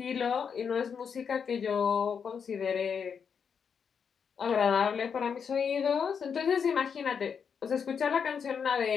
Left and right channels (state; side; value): quieter; right; 6.7 dB